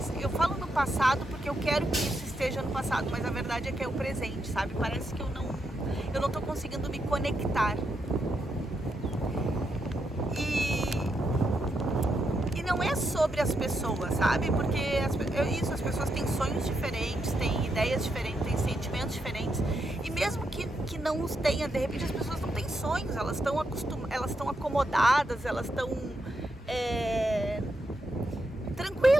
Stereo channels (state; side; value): normal; both; correlation 0.82